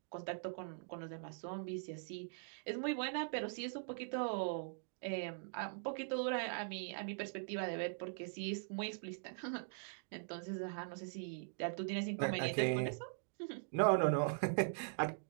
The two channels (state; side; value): silent; left; digital silence